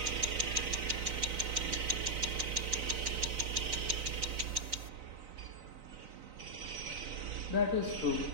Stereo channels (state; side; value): late; left; 4.0 ms